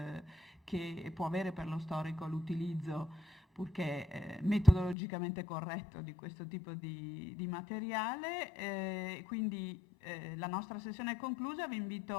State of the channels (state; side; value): drops out; right; at 5.0 s